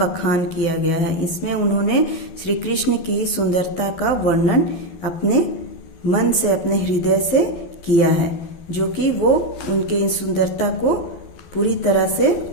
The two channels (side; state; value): right; late; 12 ms